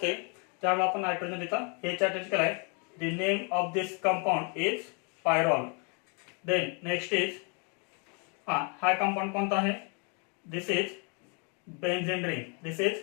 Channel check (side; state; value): right; quieter; 35.8 dB